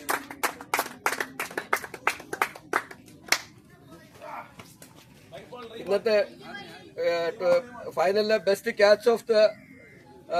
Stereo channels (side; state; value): both; identical; correlation 1.00